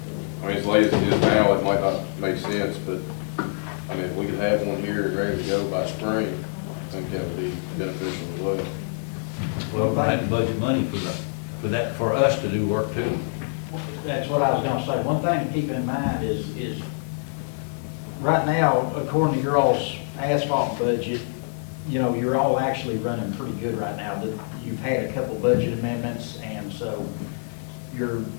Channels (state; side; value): silent; right; digital silence